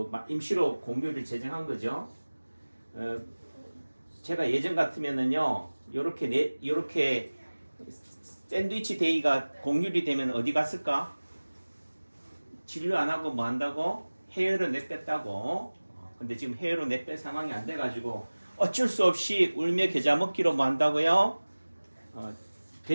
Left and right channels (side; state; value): both; inverted; correlation -1.00